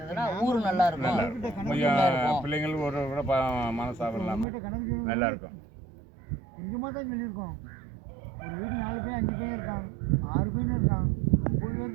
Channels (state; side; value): drops out; left; at 4.5 s